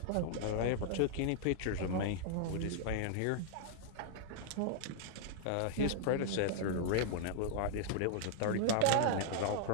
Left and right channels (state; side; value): different; both; correlation -0.01